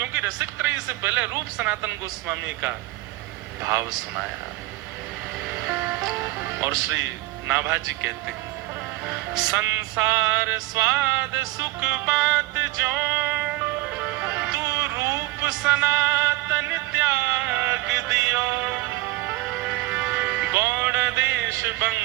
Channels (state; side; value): quieter; left; 18.5 dB